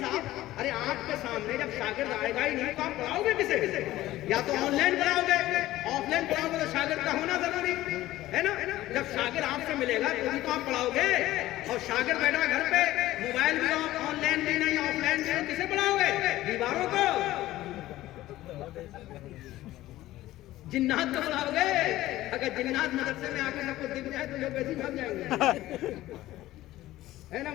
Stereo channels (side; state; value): right; quieter; 15.8 dB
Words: ارے آپ کے سامنے جب شاگرد آئے گا ہی نہیں تو آپ پڑھاؤ گے کسے؟ یا تو آن لائن پڑھاؤ گے, آف لائن پڑھاؤ گے تو شاگرد کا ہونا ضروری ہے نا. جب شاگرد آپ سے ملے گا تو آپ پڑھاؤ گے, اور شاگرد بیٹھا گھر پہ موبائل بھی آن لائن بھی نہیں آف لائن بھی کسے پڑھاؤ گے؟ دیواروں کو, جنات کو پڑھاؤ گے. اگر جنات مدرسے میں آ کے سب کو دکھ جائے تو لوگ ویسے بھاگ جائیں گے ہے نا.